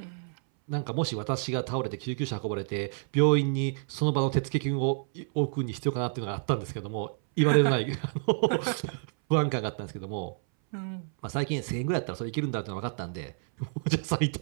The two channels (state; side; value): silent; left; 58 dB below the other